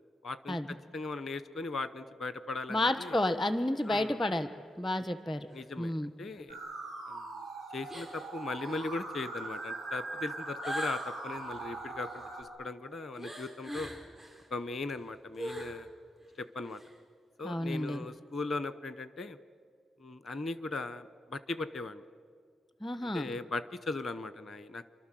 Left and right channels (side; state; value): both; normal; correlation 0.83